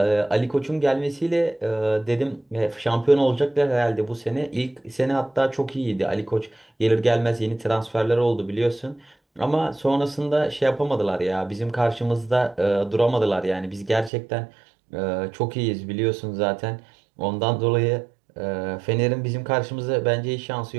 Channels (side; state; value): left; drops out; at 14.1 s